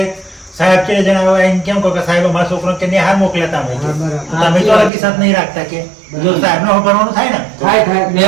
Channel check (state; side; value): drops out; left; at 4.9 s